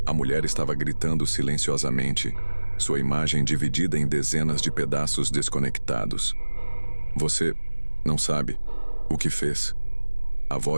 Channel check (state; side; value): inverted; both; correlation -1.00